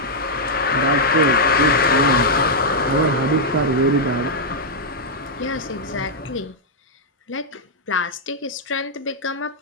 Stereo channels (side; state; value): both; normal; correlation -0.05